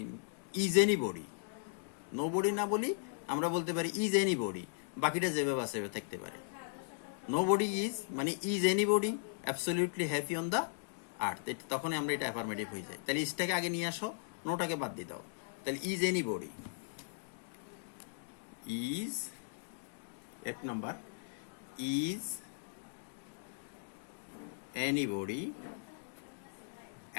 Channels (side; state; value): right; silent; digital silence